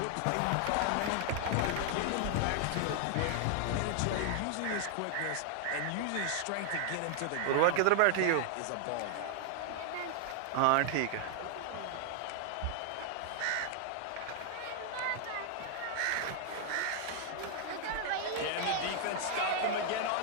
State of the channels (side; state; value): both; different; correlation 0.00